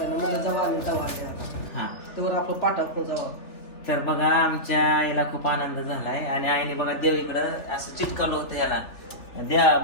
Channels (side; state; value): right; late; 3.4 ms